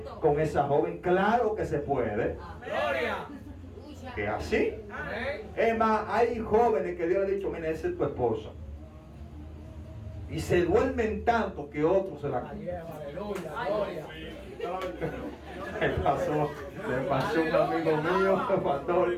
con esa joven. Claro que se puede. Gloria. Que así. Amén. Es más, hay jóvenes que Dios le ha dicho, mira, esa es tu esposa. Y se duermen tanto que otros se la... Aleluya. Gloria. Le pasó a un amigo mío,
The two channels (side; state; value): both; identical; correlation 1.00